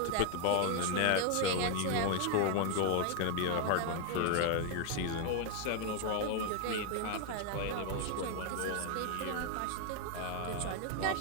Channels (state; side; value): different; both; correlation 0.00